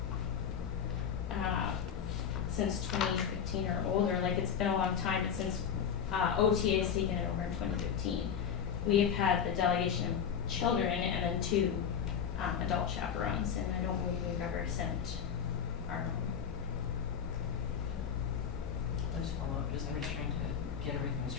since 2015 or older, like it's been a long time, but since OTA has taken it over in 2015. We have had the delegation of children and then 2 adult chaperones, and I don't believe we've ever sent our own. I'll just follow up, I'm just trying to get everything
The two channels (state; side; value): quieter; right; 7.7 dB